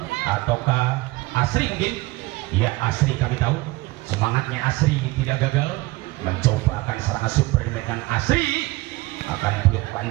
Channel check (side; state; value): left; quieter; 20.8 dB